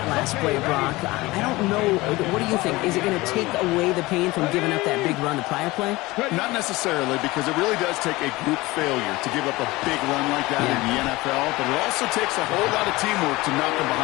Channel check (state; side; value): quieter; right; 20.8 dB